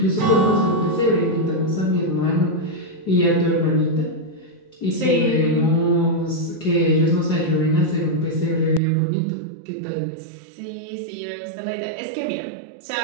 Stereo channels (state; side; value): drops out; left; at 8.8 s